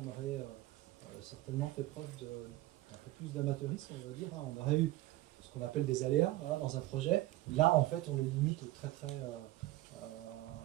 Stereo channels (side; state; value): left; quieter; 16.9 dB